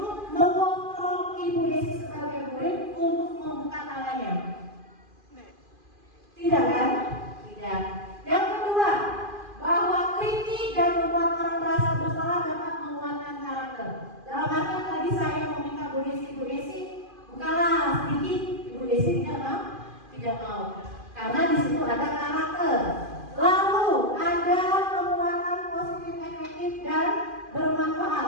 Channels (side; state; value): left; late; 2.5 ms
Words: mengontrol Ibu Desi sebagai murid untuk membuka tangannya? Tidak kan? Tidak. Yang kedua, bahwa kritik dan membuat orang merasa bersalah dapat menguatkan karakter. Dalam artian tadi saya meminta Bu Desi, bukalah sedikit. Ibu Desi tidak mau. Karena di situ ada karakter. Lalu ada penguatan positif efektif dan bermanfaat.